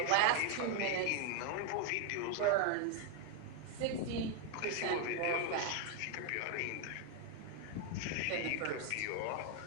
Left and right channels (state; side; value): different; both; correlation 0.01